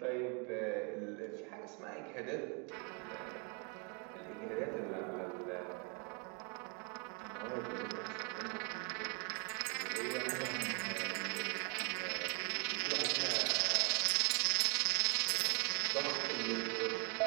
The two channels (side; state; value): left; quieter; 36.7 dB